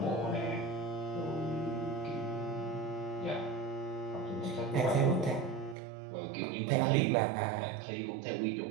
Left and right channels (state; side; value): drops out; left; at 5.8 s